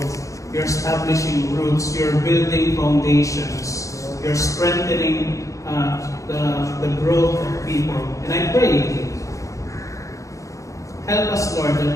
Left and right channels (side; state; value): right; late; 0.15 ms